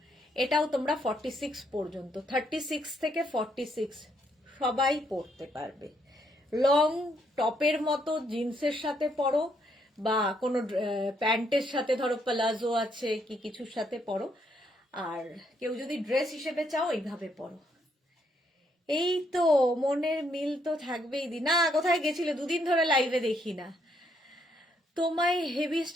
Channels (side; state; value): both; normal; correlation 0.73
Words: এটাও তোমরা 46 পর্যন্ত, 36 থেকে 46 সবাই পরতে পারবে। লং টপের মতো জিন্সের সাথে পরো বা কোনো প্যান্টের সাথে, ধরো প্লাজো আছে কি কিছুর সাথে পরো, আর কেউ যদি ড্রেস হিসেবে চাও এইভাবে পরো। এই তো মনের মিল তো থাকবেই। না কোথায় গেছিলে, দুদিন ধরে লাইভে দেখি না তোমায়, হেভি